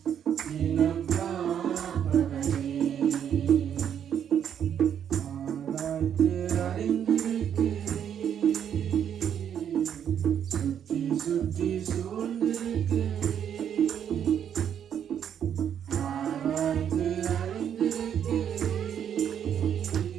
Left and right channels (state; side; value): quieter; left; 8.9 dB